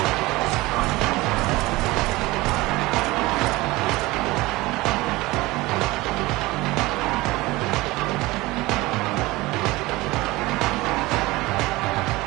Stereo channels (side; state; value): left; quieter; 20.5 dB